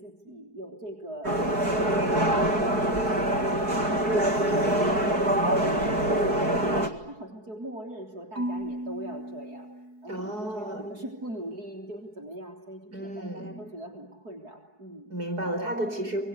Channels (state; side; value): late; left; 4.7 ms